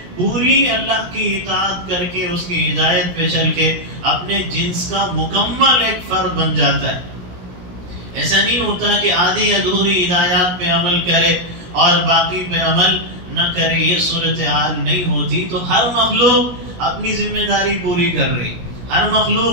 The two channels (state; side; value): late; left; 17 ms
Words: پوری اللہ کی اطاعت کر کے اس کی ہدایت پہ چل کے اپنے جنس کا مکمل ایک فرد بن جاتا ہے. ایسا نہیں ہوتا کہ آدھی ادھوری ہدایات پہ عمل کرے اور باقی پہ عمل نہ کرے. یہ صورتحال نہیں ہوتی. تو ہر مخلوق اپنی ذمہ داری پوری کر رہی، ہر